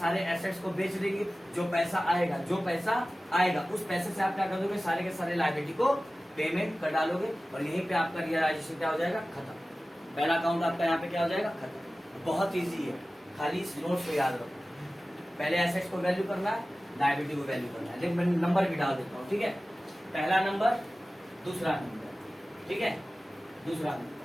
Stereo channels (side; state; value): both; normal; correlation 0.96